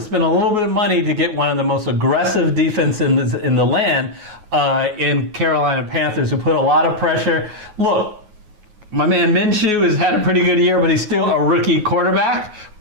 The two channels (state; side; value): late; left; 9.4 ms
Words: a little bit of money to get one of the most aggressive defense in the land in Carolina Panthers, who put a lot of pressure. Look, my man Minshew has had a pretty good year, but he's still a rookie quarterback.